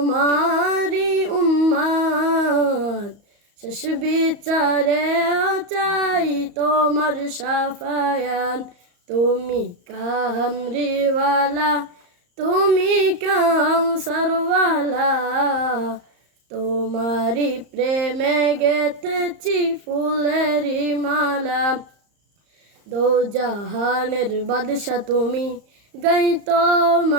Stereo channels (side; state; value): left; late; 34 ms